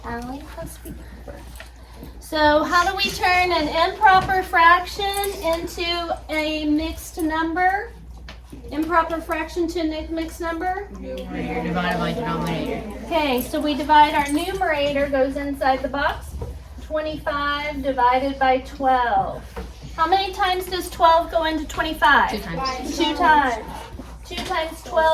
Allie, it has to be proper. So how do we turn an improper fraction into a mixed number? Improper fraction to a mixed number? Numerator divided by denominator. Okay, so we divide our numerator, goes inside the box. 25 divided by 12. How many times does 12 go into 25? 2 times. 2 times. 2 times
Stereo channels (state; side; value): identical; both; correlation 1.00